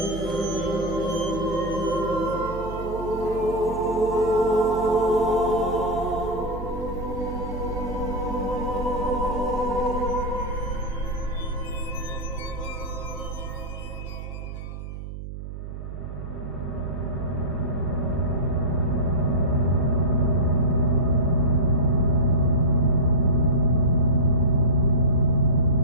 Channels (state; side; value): noise; right; hum, 9 dB below the sound